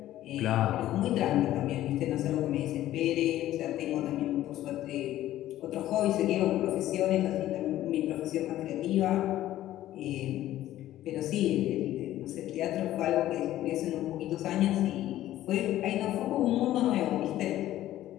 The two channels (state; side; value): quieter; right; 13.8 dB